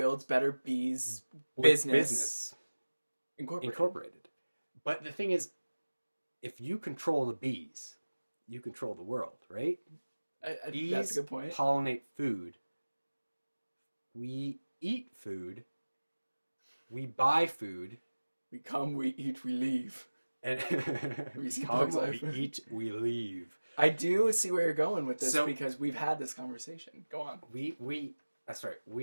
better bees. With business. Incorporated. Incorporated. But the thing is, if you control the bees, you control the world, right? Bees That's a good point. pollinate food. We eat food. We buy food. We come, we eat, we leave. And we see come, Bug's Life. we eat, we leave. I do see where you're going with this So- because we've had this conversation. Go on. We that's right.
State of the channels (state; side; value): inverted; both; correlation -1.00